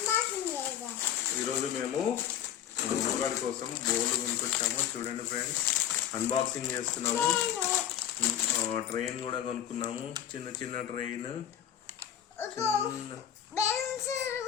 ఈరోజు మేము ముందుగాడి కోసం బోర్డు కొనుక్కొచ్చాము. చూడండి ఫ్రెండ్స్, అన్బాక్సింగ్ చేస్తున్నాము. ట్రైన్ కూడా కొనుక్కున్నాము, చిన్న చిన్న ట్రైన్.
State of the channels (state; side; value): quieter; right; 10.3 dB